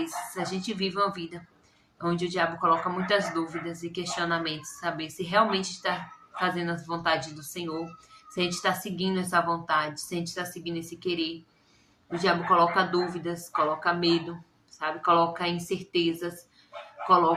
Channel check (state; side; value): identical; both; correlation 1.00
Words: a gente vive uma vida onde o diabo coloca muitas dúvidas e questionamentos, saber se realmente está fazendo as vontades do Senhor, se a gente está seguindo essa vontade, se a gente está seguindo esse querer. O diabo coloca dúvidas, coloca medo, sabe? Coloca incertezas,